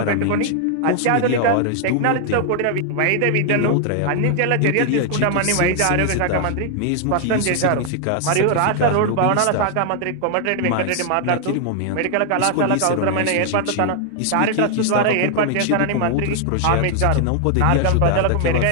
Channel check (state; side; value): different; both; correlation 0.00